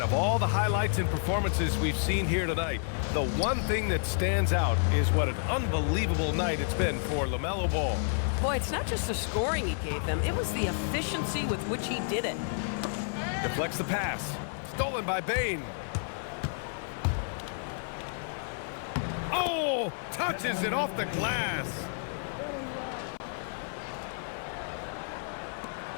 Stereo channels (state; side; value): silent; right; 57 dB below the other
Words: of all the highlights and performances we've seen here tonight, the one thing that stands out is what an unbelievable night it's been for LaMelo Ball. Boy, it's not just the scoring he gave them, it was the efficiency with which he did it. Deflects the pass. Stolen by Bain. Oh, touches it off the glass.